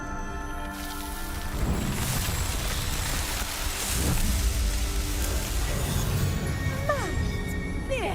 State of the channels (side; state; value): both; identical; correlation 1.00